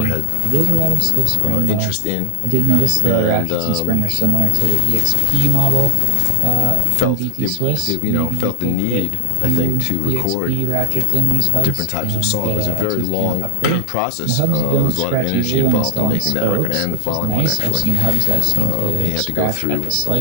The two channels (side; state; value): both; different; correlation 0.00